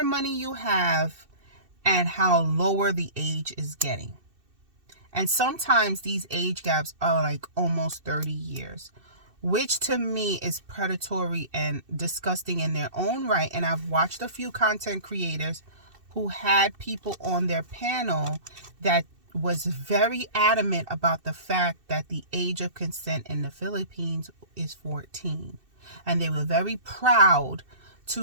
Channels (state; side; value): late; left; 2.6 ms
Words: money you have and how lower the age is getting. And sometimes these age gaps are like almost 30 years. Which to me is predatory and disgusting in their own right. And I've watched a few content creators who had people on their panel that was very adamant about the fact that the age of consent in the Philippines is 14. And they were very proud